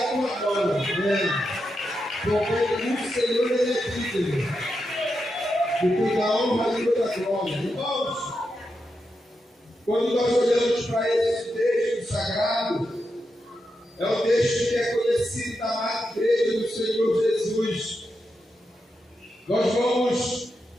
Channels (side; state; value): both; normal; correlation 0.86